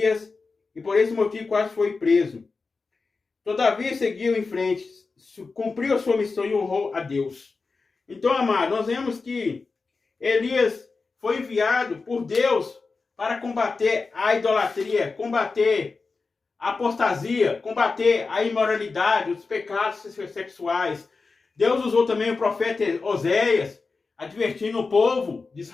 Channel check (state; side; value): quieter; right; 4.2 dB